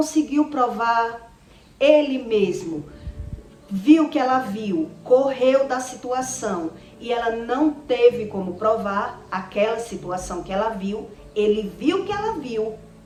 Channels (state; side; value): identical; both; correlation 1.00